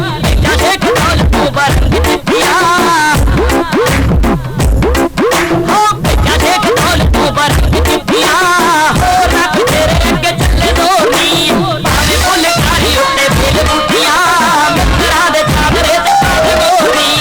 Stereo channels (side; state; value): both; identical; correlation 1.00